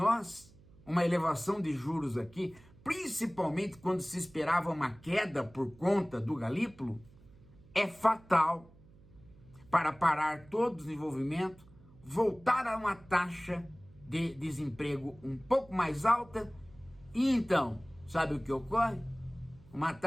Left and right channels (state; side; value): noise; right; hum, 25 dB below the sound